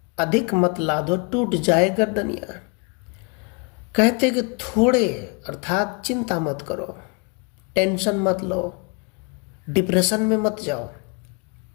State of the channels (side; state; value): right; quieter; 32.6 dB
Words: अधिक मत लादो, टूट जाए गर्दनिया। कहते कि थोड़े अर्थात चिंता मत करो, टेंशन मत लो, डिप्रेशन में मत जाओ।